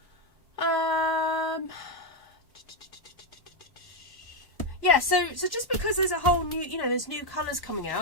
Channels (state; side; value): late; right; 1.1 ms